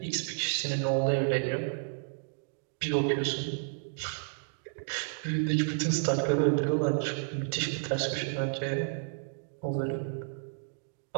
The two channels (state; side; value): silent; left; digital silence